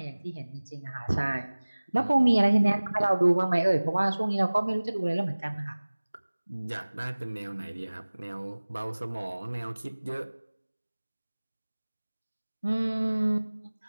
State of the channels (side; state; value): both; inverted; correlation -1.00